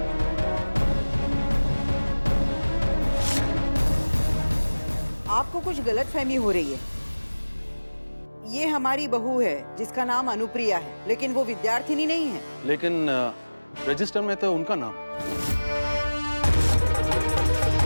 आपको कुछ गलतफहमी हो रही है। ये हमारी बहू है जिसका नाम अनुप्रिया है, लेकिन वो विद्यार्थिनी नहीं है। लेकिन रजिस्टर में तो उनका नाम।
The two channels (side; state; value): both; inverted; correlation -1.00